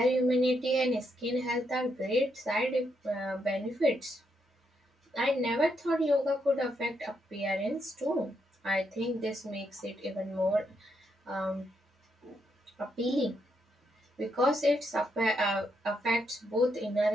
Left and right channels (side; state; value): both; normal; correlation 0.79